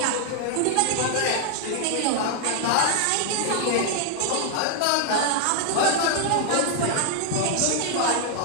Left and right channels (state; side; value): different; both; correlation 0.00